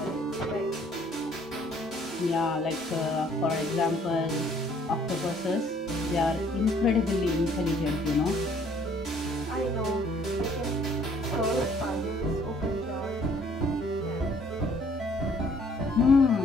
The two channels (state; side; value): normal; both; correlation 0.61